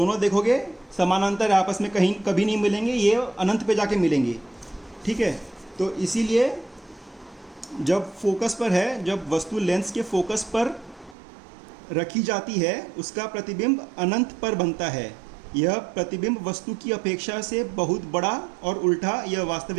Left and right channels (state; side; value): drops out; left; at 11.2 s